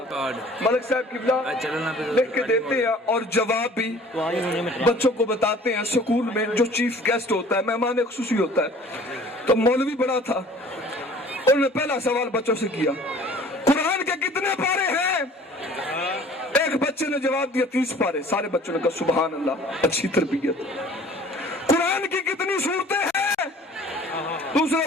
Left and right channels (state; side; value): normal; both; correlation 0.49